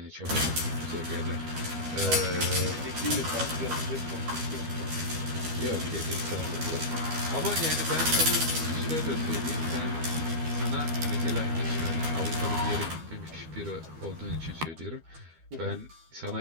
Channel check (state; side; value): late; left; 12 ms